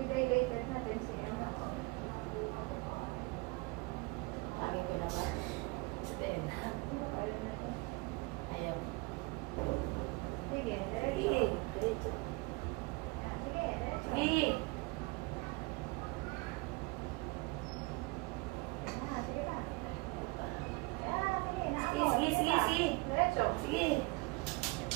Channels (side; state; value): left; quieter; 25.5 dB